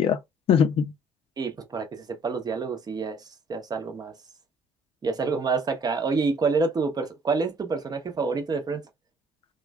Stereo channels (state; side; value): normal; both; correlation 0.57